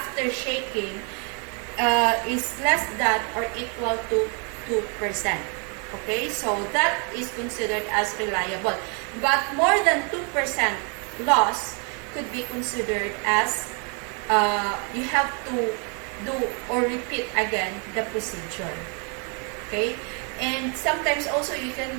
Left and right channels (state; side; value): quieter; left; 37.2 dB